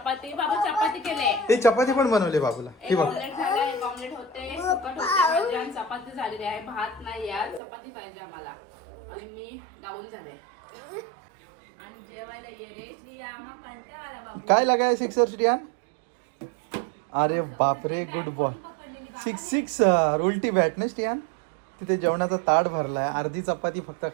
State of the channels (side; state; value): left; drops out; at 7.6 s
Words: बाबा चपाती केले. ते चपाती पण बनवले बाबूला. हे बघ ऑमलेट होते, सुकट होते आणि चपाती झालेली आहे. भात नाही यार, चपाती पाहिजे आम्हाला. आणि मी डाऊन झाले. आणि जेवायला ये रे श्रिया, आम्हाला कंटाळा आला बाबा. काय लगाय सिक्सर श्रियान? अरे बापरे, गुड बॉय. सिक्सर. उलटी बॅट ना श्रियान. तिथे जेवणाचा ताट भरलाय, अर्धी चपाती फक्त